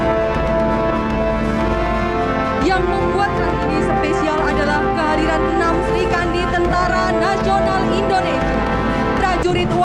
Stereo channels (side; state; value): both; identical; correlation 1.00